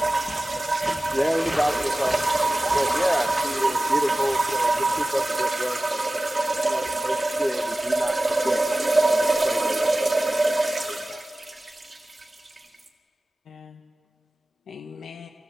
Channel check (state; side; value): normal; both; correlation 0.97